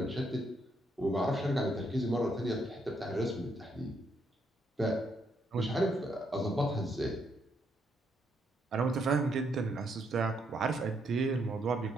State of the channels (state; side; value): normal; both; correlation 0.75